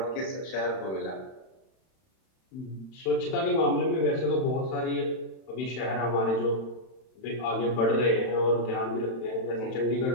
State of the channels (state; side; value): late; right; 31 ms